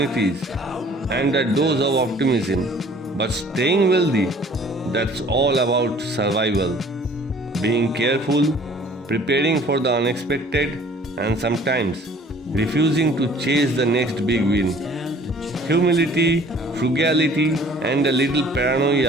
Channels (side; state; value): both; normal; correlation 0.53